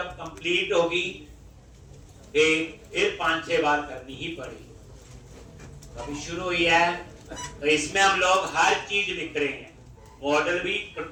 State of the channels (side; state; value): both; identical; correlation 1.00